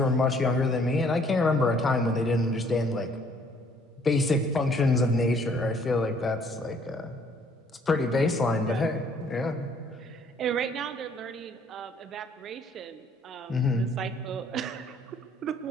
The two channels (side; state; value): both; normal; correlation 0.61